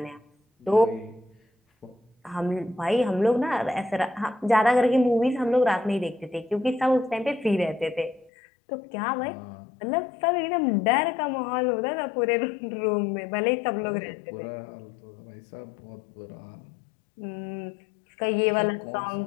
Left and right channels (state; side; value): drops out; right; at 8.3 s